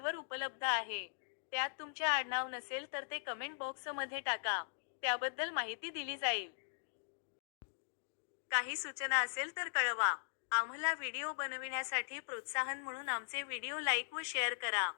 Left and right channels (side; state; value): right; silent; digital silence